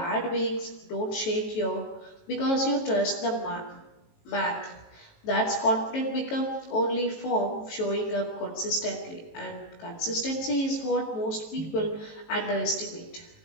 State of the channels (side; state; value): right; late; 18 ms